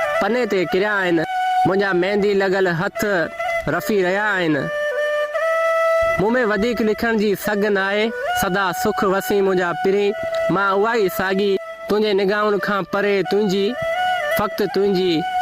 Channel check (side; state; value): both; identical; correlation 1.00